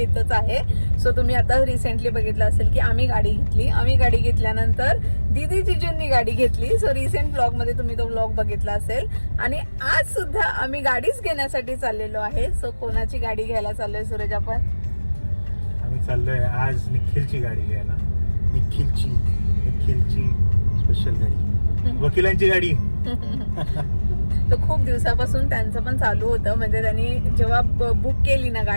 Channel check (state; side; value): inverted; both; correlation -1.00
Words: आहे. सो तुम्ही आता रिसेंटली बघितलं असेल की आम्ही गाडी घेतल्यानंतर दीदी जिजूंनी गाडी घेतली. सो रिसेंट व्लॉगमध्ये तुम्ही तो व्लॉग बघितला असेल. आणि आज सुद्धा आम्ही गाडीच घेण्यासाठी चाललेलो आहे. सो कोणाची गाडी घ्यायला चाललोय सूरज? आम्ही चाललोय आज निखिलची गाडी घ्यायला. निखिलची स्पेशल गाडी, वकिलांची गाडी. तर खूप दिवसापासून त्यांचं पण चालू होतं. म्हणजे त्यांनी जेव्हा बुक केली ना